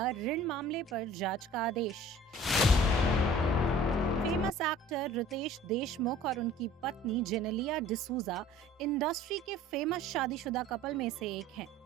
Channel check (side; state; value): both; normal; correlation 0.48